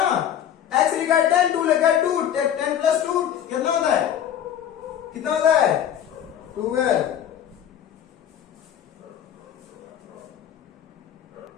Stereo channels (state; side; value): quieter; right; 10.0 dB